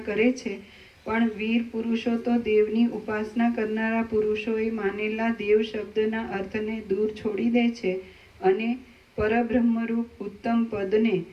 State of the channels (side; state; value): both; identical; correlation 1.00